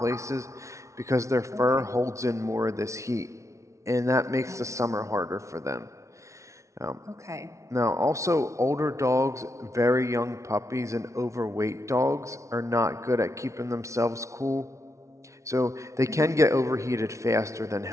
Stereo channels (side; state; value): left; late; 0.14 ms